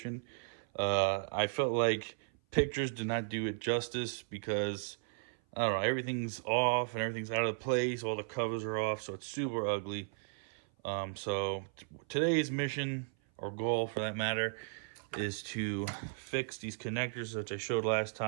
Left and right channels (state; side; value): silent; left; 54 dB below the other